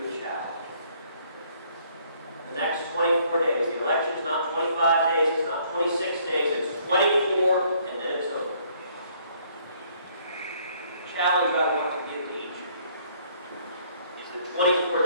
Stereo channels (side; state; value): both; inverted; correlation -0.64